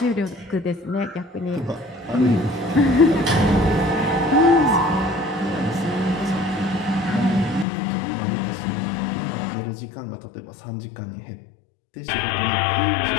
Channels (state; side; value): drops out; right; at 7.7 s